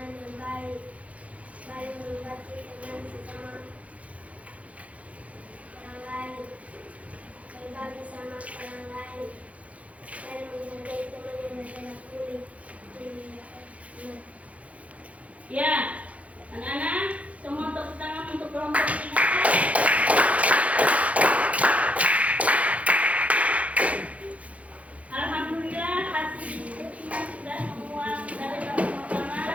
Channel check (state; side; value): late; left; 0.066 ms